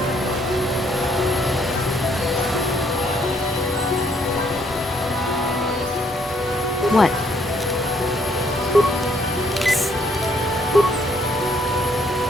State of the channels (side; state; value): both; normal; correlation 0.68